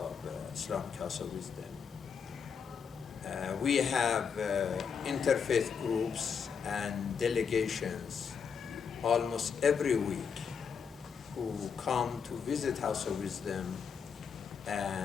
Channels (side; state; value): right; quieter; 6.6 dB